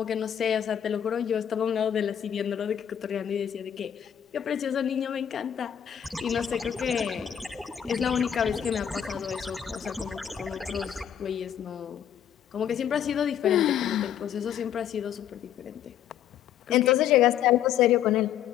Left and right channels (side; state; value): right; quieter; 9.6 dB